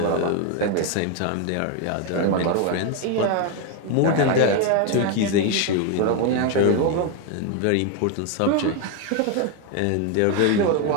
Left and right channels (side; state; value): both; different; correlation 0.01